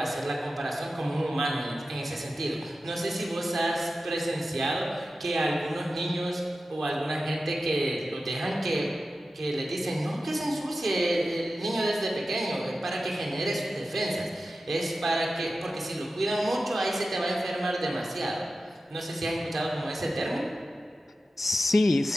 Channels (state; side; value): normal; both; correlation 0.93